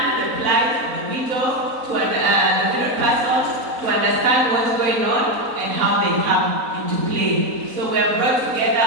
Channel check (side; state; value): left; late; 4.1 ms